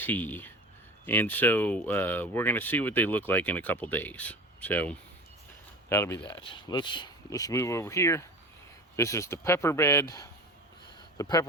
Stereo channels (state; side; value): normal; both; correlation 0.34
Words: And so we're going to see what they look like in a couple days. So that'll be that. Let's move over here. This is the pepper bed. The